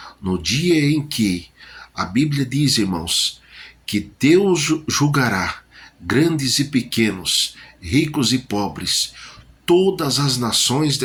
no dia em que a Bíblia diz, irmãos, que Deus julgará grandes e pequenos, ricos e pobres, todas as nações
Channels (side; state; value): both; identical; correlation 1.00